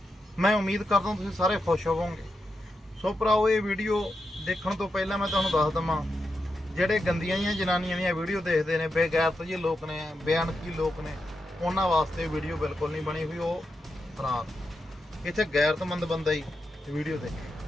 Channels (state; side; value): normal; both; correlation 0.87